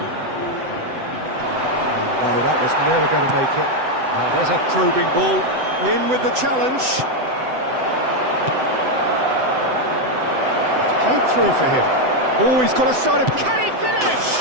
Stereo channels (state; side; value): late; left; 7.9 ms